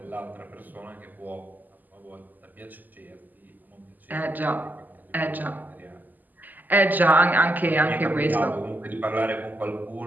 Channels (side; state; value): left; late; 0.085 ms